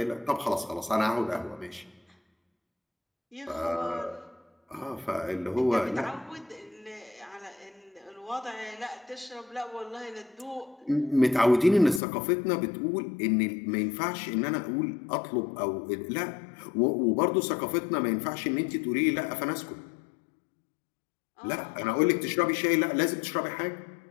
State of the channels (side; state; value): right; drops out; at 12.0 s